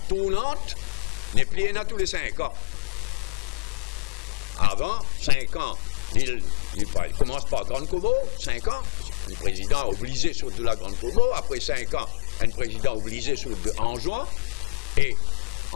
n'est pliée à tous les 5 ans. Avant, 5 ans, l'île commence par Grande Comore, 5 ans, un président obligé sur de la Grande Comore, après 5 ans, un président obligé sur de Anjouan, et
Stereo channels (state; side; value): quieter; right; 28.8 dB